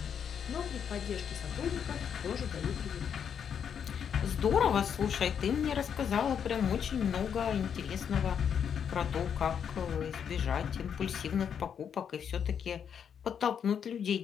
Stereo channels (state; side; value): quieter; right; 7.8 dB